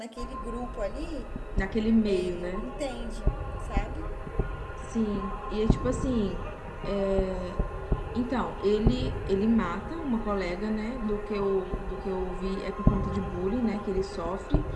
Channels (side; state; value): both; identical; correlation 1.00